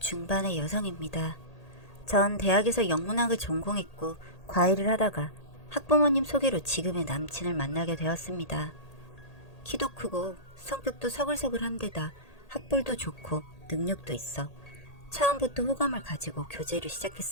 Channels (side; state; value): right; late; 1.8 ms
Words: 여성입니다. 전 대학에서 영문학을 전공했고 과외를 하다가 학부모님 소개로 지금의 남친을 만나게 되었습니다. 키도 크고 성격도 서글서글한 데다 학벌도 좋고 능력도 있어 처음부터 호감을 가지고 교제를